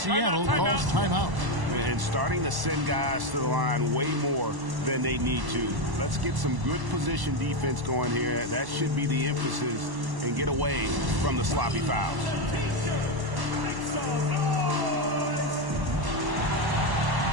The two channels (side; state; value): left; late; 1.1 ms